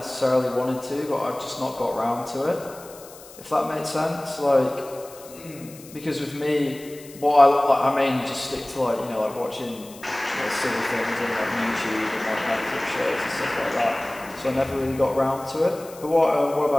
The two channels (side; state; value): left; noise; hiss, 19 dB below the sound